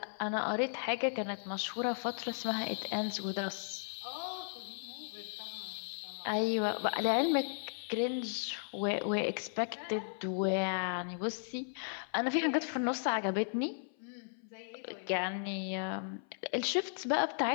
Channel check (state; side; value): silent; right; 54 dB below the other